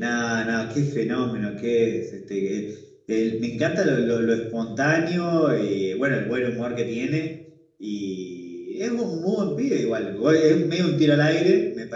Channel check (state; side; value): identical; both; correlation 1.00